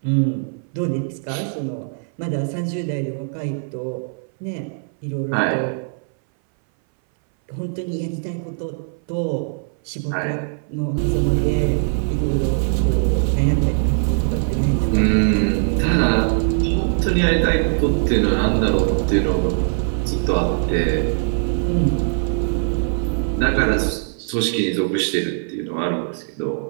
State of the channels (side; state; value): left; silent; 60 dB below the other